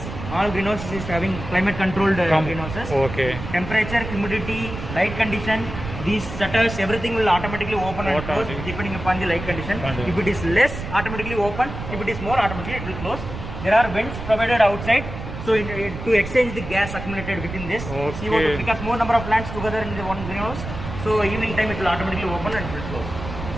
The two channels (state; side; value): noise; right; rumble, 8 dB below the sound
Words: All greenhouses is having climate controlled greenhouses. Okay. Temperature, humidity, light condition. These shutters, everything will automatically open and close depending upon the light condition. If it is less, automatically open. If it is more, automatically it will close. There are vents provided outside. So to exchange the gas accumulated within this, CO2, because more number of plants together in the one greenhouse. So evening time it will automatically open and it will close.